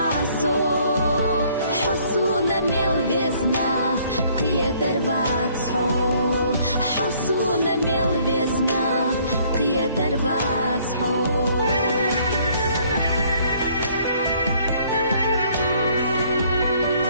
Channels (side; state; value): both; inverted; correlation -0.62